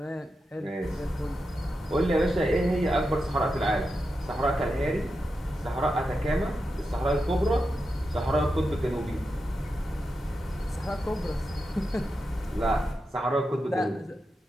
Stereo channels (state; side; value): normal; both; correlation 0.88